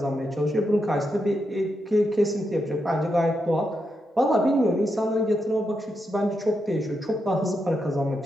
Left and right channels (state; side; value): normal; both; correlation 0.84